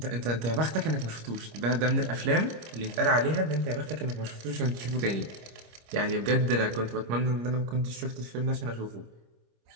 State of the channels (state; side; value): late; left; 25 ms